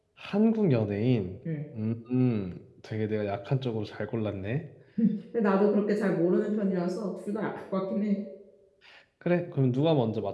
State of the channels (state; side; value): identical; both; correlation 1.00